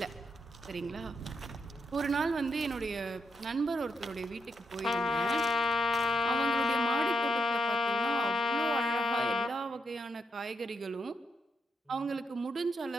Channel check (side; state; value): both; normal; correlation 0.79